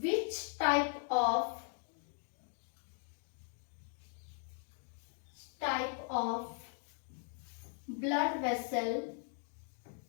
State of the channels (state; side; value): silent; right; 52 dB below the other